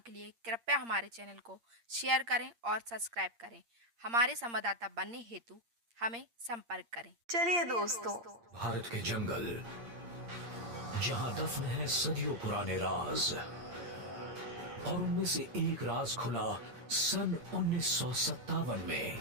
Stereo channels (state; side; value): late; left; 8.6 ms